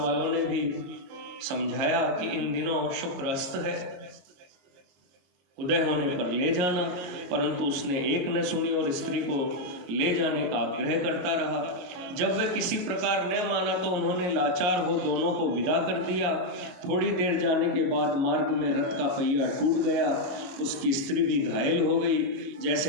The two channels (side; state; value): left; late; 22 ms